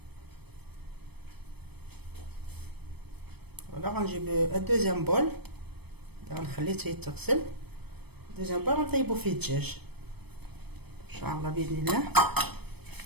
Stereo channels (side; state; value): left; late; 0.97 ms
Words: فوالا غنجيب الدوزيام بول، غنخليه حتى يتغسل. دوزيام بول غنطيبو فيه الدجاج ان شاء الله باذن الله.